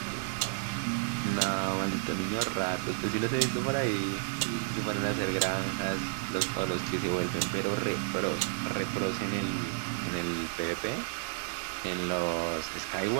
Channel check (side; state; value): left; silent; digital silence